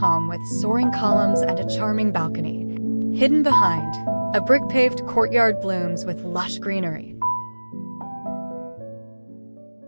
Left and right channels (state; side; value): inverted; both; correlation -1.00